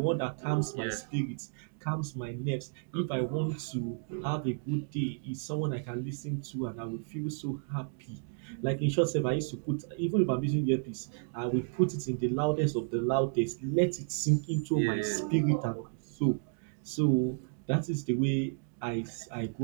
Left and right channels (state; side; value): silent; left; digital silence